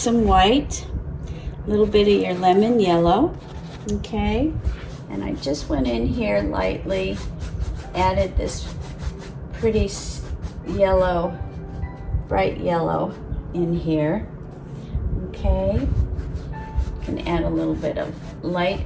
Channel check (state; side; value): identical; both; correlation 1.00